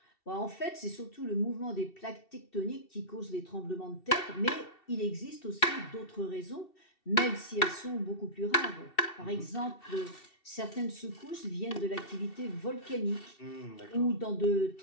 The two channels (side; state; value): right; late; 2.7 ms